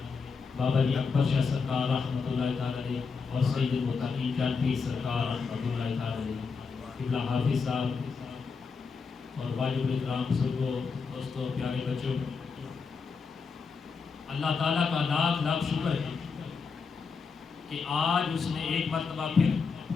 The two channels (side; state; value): right; quieter; 5.2 dB